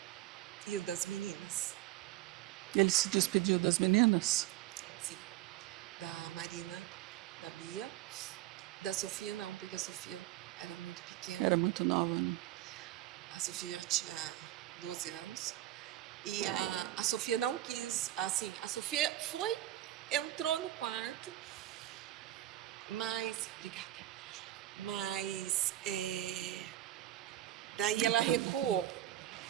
e o das meninas. Ele se despediu das meninas? Sim, da Marina, da Bia, da Sofia não, porque a Sofia era muito pequena. Era muito nova, né? A Sofia tinha 12 anos. E a Sofia não quis, assim, a Sofia entrou no quarto, mas, obrigada, mas daí ela recuou.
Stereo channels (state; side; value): quieter; left; 14.4 dB